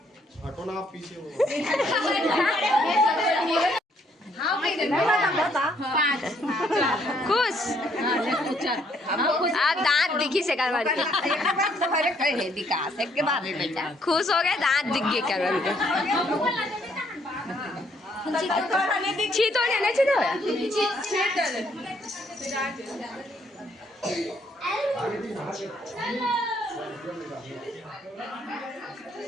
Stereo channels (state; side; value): normal; both; correlation 0.69